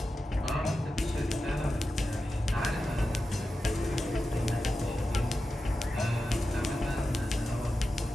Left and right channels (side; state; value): both; normal; correlation 0.92